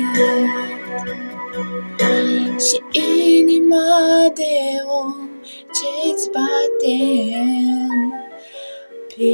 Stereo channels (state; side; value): inverted; both; correlation -1.00